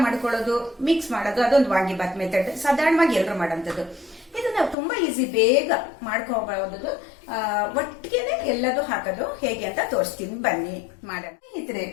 ಮಾಡ್ಕೊಳ್ಳೋದು, ಮಿಕ್ಸ್ ಮಾಡೋದು, ಅದೊಂದು ವಾಂಗಿ ಬಾತ್ ಮೆಥಡ್ ಸಾಧಾರಣವಾಗಿ ಎಲ್ಲರೂ ಮಾಡೋಂಥದ್ದು. ಇದನ್ನ ತುಂಬಾ ಈಸಿ, ಬೇಗ ಮಾಡ್ಕೋಬಹುದು. ಒಟ್ಟಿಗೆನೆ ಎಲ್ಲದೂ ಹಾಕೋದು ಹೇಗೆ ಅಂತ ತೋರಿಸ್ತೀನಿ, ಬನ್ನಿ ಮಾಡೋಣ.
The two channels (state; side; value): drops out; right; at 4.8 s